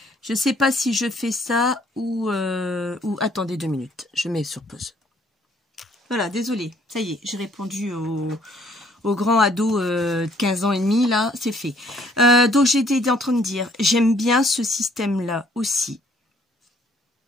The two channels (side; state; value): both; normal; correlation 0.63